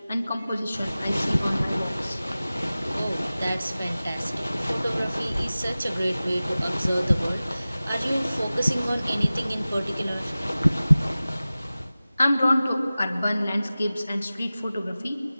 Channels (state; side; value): inverted; both; correlation -0.97